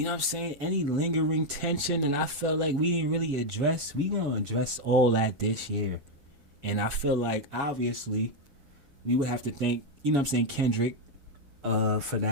know what I'm saying, any lingering tension, and I felt like we didn't really address, we gonna address all that this year. And I feel like, obviously, we would have to thank, you know what I'm saying, Kendrick for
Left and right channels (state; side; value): late; left; 6.9 ms